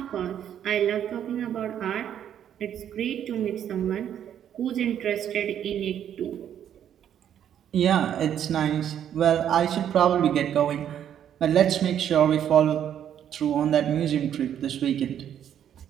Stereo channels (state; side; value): quieter; left; 9.8 dB